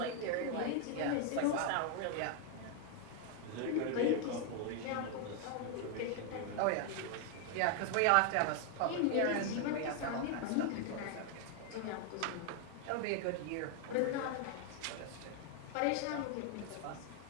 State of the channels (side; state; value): both; different; correlation 0.00